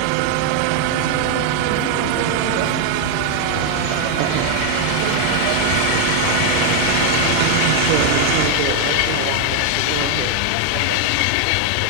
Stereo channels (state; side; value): different; both; correlation 0.01